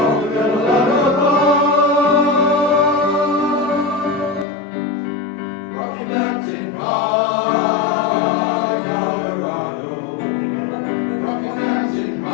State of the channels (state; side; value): drops out; right; at 4.5 s